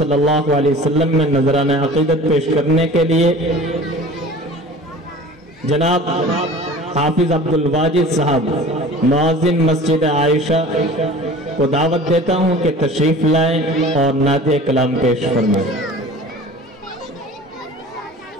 اللہ علیہ وسلم میں نذرانہ عقیدت پیش کرنے کے لیے جناب حافظ عبدالواجد صاحب معاذن مسجد عائشہ کو دعوت دیتا ہوں کہ تشریف لائیں اور نعت کلام پیش فرمائیں۔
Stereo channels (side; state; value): both; normal; correlation 0.41